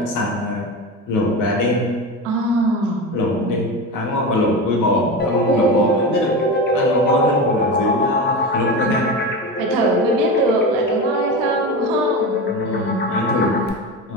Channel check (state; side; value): normal; both; correlation 0.23